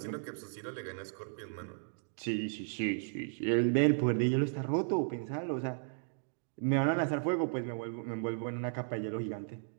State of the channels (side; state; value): left; silent; digital silence